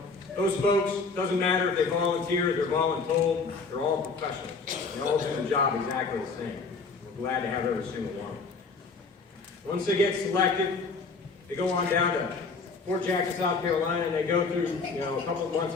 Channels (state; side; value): quieter; right; 4.4 dB